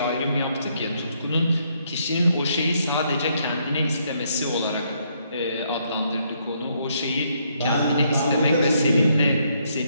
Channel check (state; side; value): inverted; both; correlation -0.72